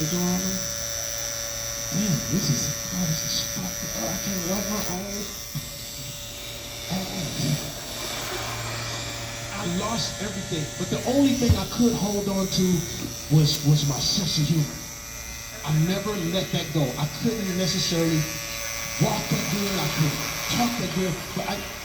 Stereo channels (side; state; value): both; identical; correlation 1.00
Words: the door on me. Damn, this is fucked up. I can't wipe my own ass. I lost everything, but the only thing I could hold on to was my sense of humor. I never let that go. I couldn't necessarily walk that good, I couldn't talk that good, but